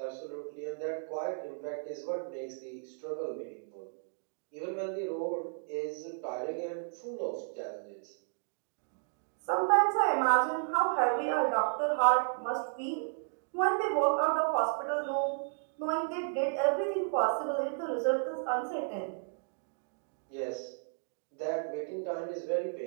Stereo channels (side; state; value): left; silent; digital silence